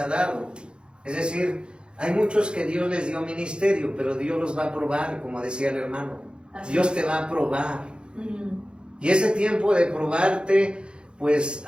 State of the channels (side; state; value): left; late; 0.053 ms